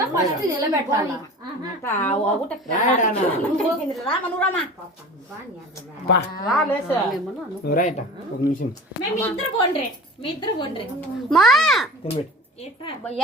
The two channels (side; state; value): both; normal; correlation 0.38